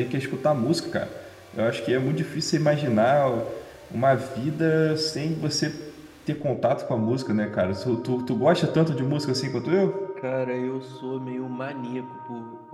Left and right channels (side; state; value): both; identical; correlation 1.00